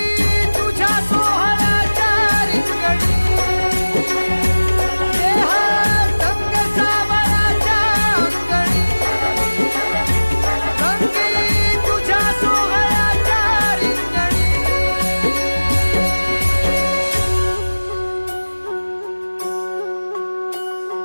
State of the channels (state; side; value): inverted; both; correlation -1.00